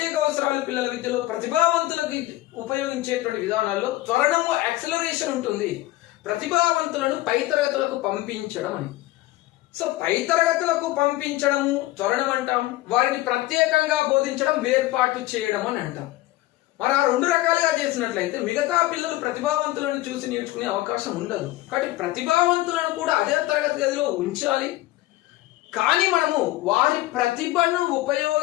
అవసరాలు పిల్లల విద్యలో ప్రతిభావంతులకు ఉపయోగించేటువంటి విధానాల్లో త్వరణము యాక్సలరేషన్ ఉంటుంది. ప్రతిభావంతులను పై తరగతులకు పంపించడం అని. సో పై తరగతులకు పంపించడము త్వరణం అంటాం. వారిని ప్రత్యేకంగా బోధించడం వేర్పాటు చేయడం అని అంటాం. మరి ఆ రెండు రకాలుగా చేసినట్లయితే మిగతా పిల్లలు ప్రతిభావంతులను చూసి నేర్చుకునే అవకాశం ఉండదు. కాబట్టి ప్రతిభావంతులను కూడా అదే తరగతి గదిలో ఉంచాలి. కానీ మనము వారి ప్రతిభను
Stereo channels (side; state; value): right; quieter; 17.3 dB